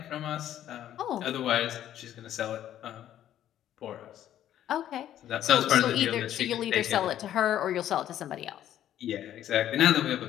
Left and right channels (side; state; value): right; quieter; 11.5 dB